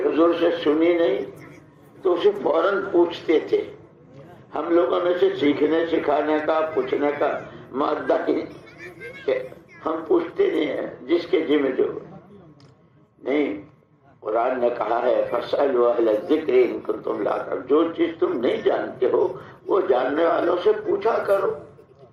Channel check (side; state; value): both; identical; correlation 1.00